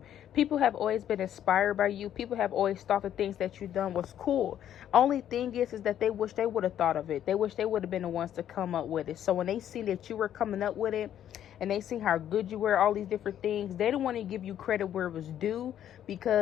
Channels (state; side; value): quieter; right; 10.6 dB